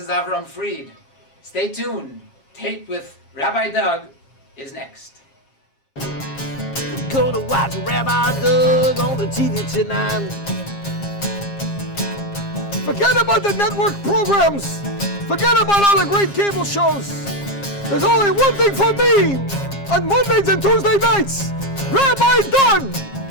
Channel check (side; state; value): right; late; 7.4 ms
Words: Avram Fried. Stay tuned. Taped with Rabbi Doug is next. Gonna watch Rabbi Doug on the TV tonight. Forget about the network programs. Forget about all the great cable shows. There's only one thing for me on Mondays and Tuesday nights. Rabbi Doug.